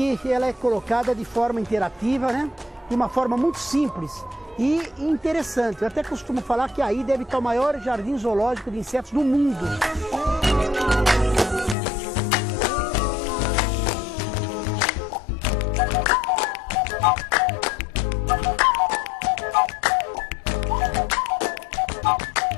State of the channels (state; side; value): drops out; right; at 11.8 s